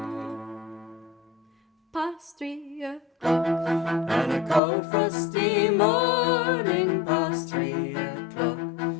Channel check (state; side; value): drops out; right; at 4.6 s